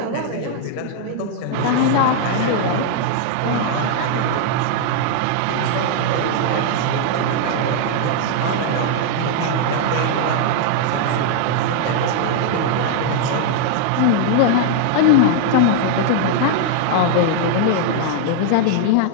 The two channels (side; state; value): both; different; correlation -0.01